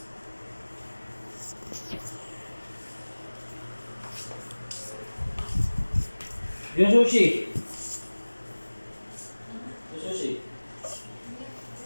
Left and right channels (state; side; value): inverted; both; correlation -1.00